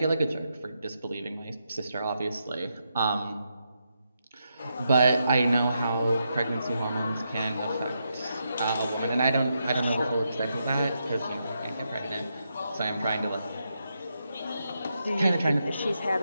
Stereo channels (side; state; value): both; inverted; correlation -0.83